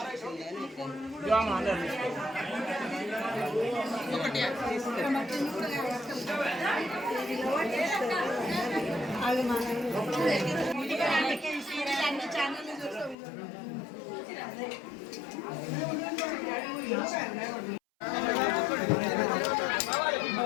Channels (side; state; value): right; drops out; at 13.2 s